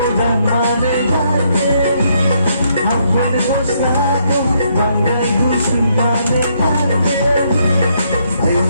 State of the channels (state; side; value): inverted; both; correlation -0.73